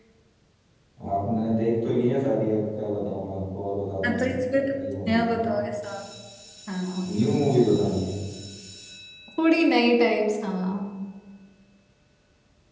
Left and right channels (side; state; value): both; identical; correlation 1.00